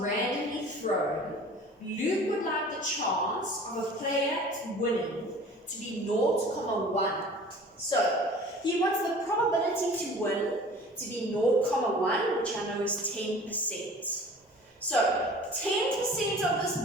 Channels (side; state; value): both; normal; correlation 0.45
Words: thrown, Luke would like the chance of a player winning to be 0.1. So he wants the probability to win to be 0.1, which I know is 10%. So 10% of this